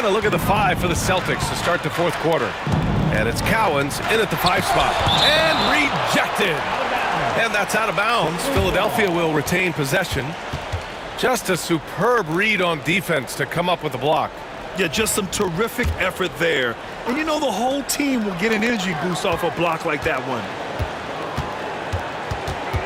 a look at the 5 for the Celtics to start the fourth quarter. And it's Cowens in at the 5 spot. And rejected. And that's out of bounds. Philadelphia will retain possession. Just a superb read on defense to come up with the block. Yeah, just some terrific effort there. And you know the whole team will get an energy boost off a block like that one.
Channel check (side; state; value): both; identical; correlation 1.00